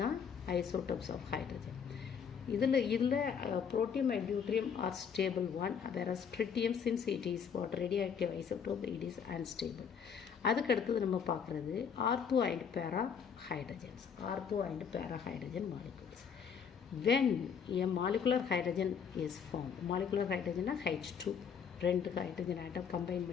ஐசோடோப்ஸ் ஆஃப் ஹைட்ரஜன். இதில் protium and deuterium are stable one, whereas tritium since it is what? radioactive isotope, it is unstable. அதுக்கு அடுத்தது நம்ம பார்க்குறது ஆர்த்தோ அண்ட் பேரா hydrogens. Ortho and para hydrogen molecules. when a molecular hydrogen is formed, molecular hydrogen H2, 2 hydrogen atom combine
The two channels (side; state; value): right; quieter; 6.9 dB